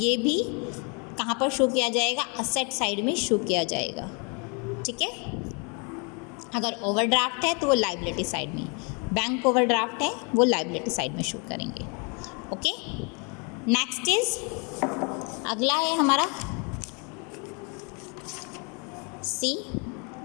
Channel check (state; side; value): quieter; right; 34.5 dB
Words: भी कहाँ पर शो किया जाएगा? असेट साइड में शो किया जाएगा. ठीक है, अगर ओवरड्राफ्ट है तो वो लाइबिलिटी साइड में, बैंक ओवरड्राफ्ट है वो लाइबिलिटी साइड में शो करेंगे. ओके, नेक्स्ट इज, अगला है हमारा सी,